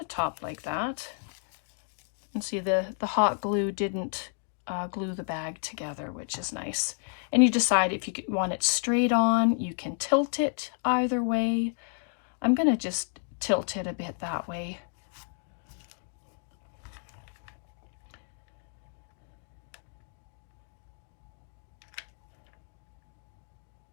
top like that. And see, the hot glue didn't glue the bag together, which is nice. And you decide if you want it straight on, you can tilt it either way. I'm going to just tilt it a bit that way.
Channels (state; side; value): silent; right; 57 dB below the other